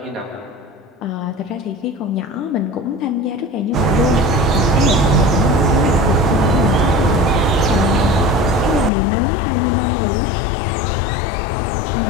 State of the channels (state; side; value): drops out; right; at 8.9 s